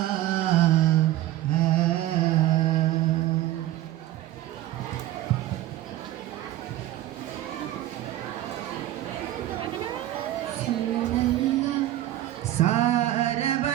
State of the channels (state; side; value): quieter; left; 14.3 dB